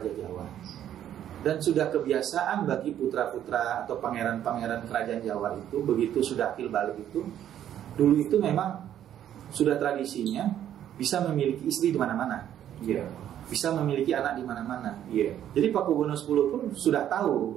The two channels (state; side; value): quieter; left; 10.8 dB